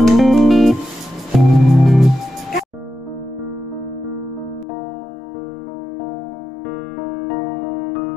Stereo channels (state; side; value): drops out; right; at 4.7 s